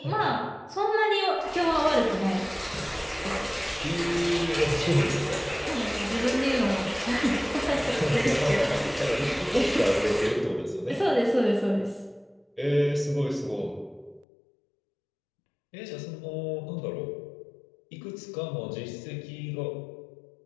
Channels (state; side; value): drops out; right; at 14.2 s